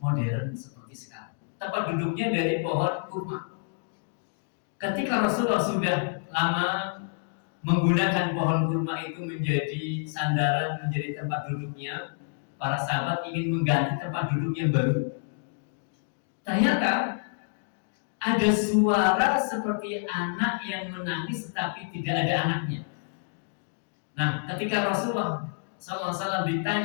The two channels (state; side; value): silent; right; digital silence